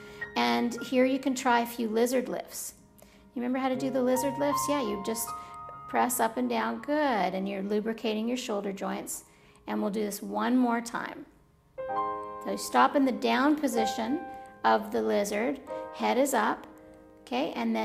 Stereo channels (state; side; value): identical; both; correlation 1.00